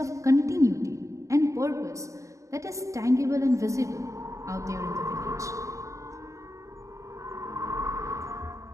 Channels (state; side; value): late; left; 0.15 ms